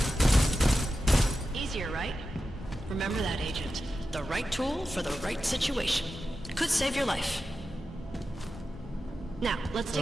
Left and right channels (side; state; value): both; normal; correlation 0.92